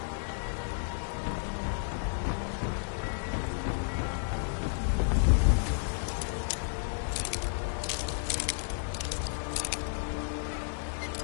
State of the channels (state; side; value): silent; right; digital silence